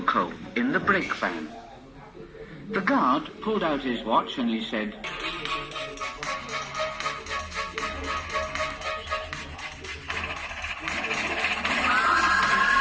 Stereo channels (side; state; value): both; identical; correlation 1.00